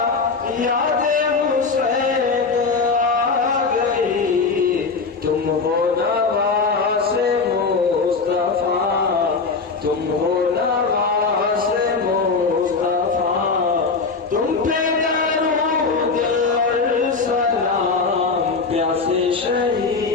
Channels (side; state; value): right; quieter; 4.5 dB